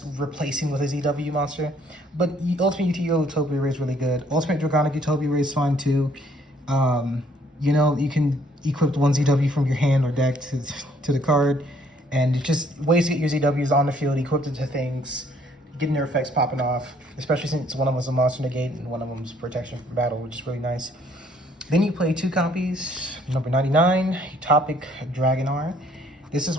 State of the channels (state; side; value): normal; both; correlation 0.64